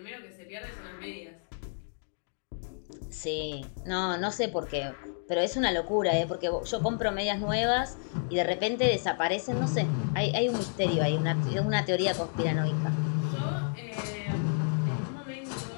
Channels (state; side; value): silent; right; digital silence